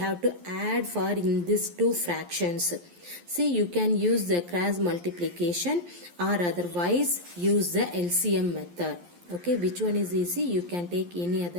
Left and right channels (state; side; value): late; left; 11 ms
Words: to add for in these two fractions. See, you can use the cross multiplication or otherwise use the LCM method. Okay, which one is easy? You can take any